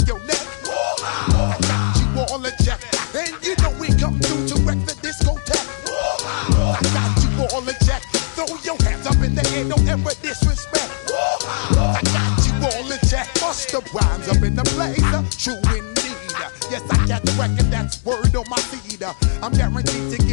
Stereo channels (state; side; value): silent; right; digital silence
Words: your neck. I got you all in check, and you know we come through to wreck the discotheque. I got you all in check. Throw your hands up in the air, don't ever disrespect. I got you all in check. Bust the rhymes up in the place, true indeed. Yes, I got the record, that's word on my seed. I'm guaranteed to